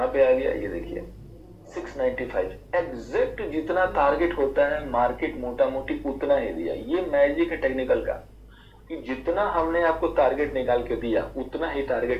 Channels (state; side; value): identical; both; correlation 1.00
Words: पे आ गया ये देखिए 695। एग्जैक्ट जितना टारगेट होता है मार्केट मोटा मोटी उतना ही दिया। ये मैजिक है टेक्निकल का कि जितना हमने आपको टारगेट निकाल के दिया उतना ही